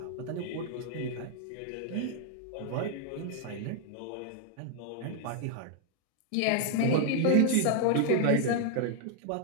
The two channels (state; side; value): different; both; correlation 0.00